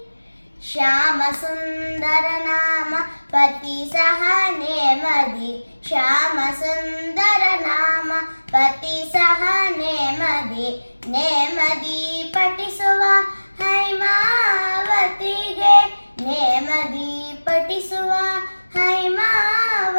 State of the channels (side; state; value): both; inverted; correlation -1.00